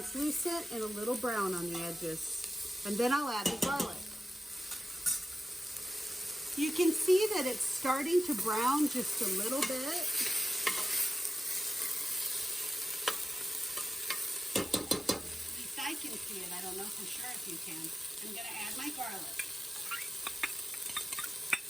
and a little brown on the edges. And then I'll add the garlic. You can see that it's starting to brown just a little bit. At least I can see it. I don't know for sure if you can. I'm going to add my garlic.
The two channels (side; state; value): both; normal; correlation 0.94